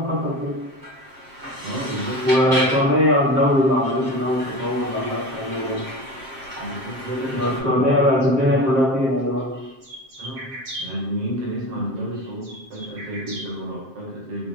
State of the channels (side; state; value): left; late; 7.6 ms